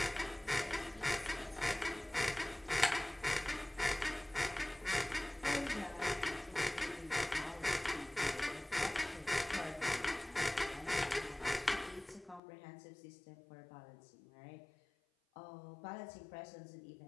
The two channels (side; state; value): right; drops out; at 12.4 s